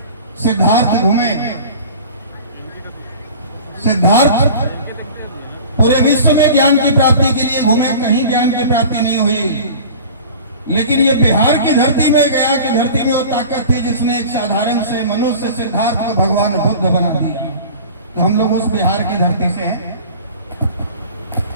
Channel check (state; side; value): inverted; both; correlation -0.40